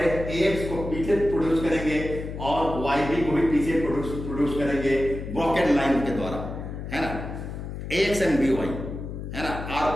AX को पीछे प्रोड्यूस करेंगे और YB को भी पीछे प्रोड्यूस करेंगे ब्रॉकेट लाइन के द्वारा, है ना। AX एंड BY, है ना, are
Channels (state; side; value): noise; left; hum, 8 dB below the sound